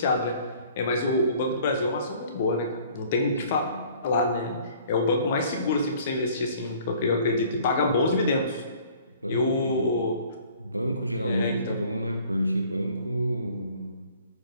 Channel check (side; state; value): both; inverted; correlation -0.54